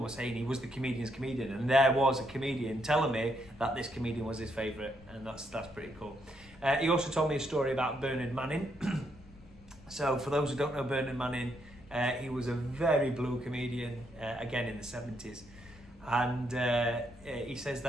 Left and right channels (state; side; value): noise; left; rumble, 22 dB below the sound